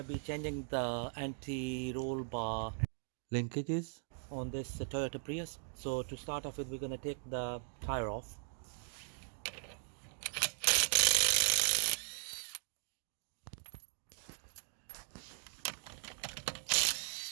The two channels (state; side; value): silent; left; digital silence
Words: be changing the anti-roll bar linkages on this Toyota Prius. So to start off with, we're going to take the tire off.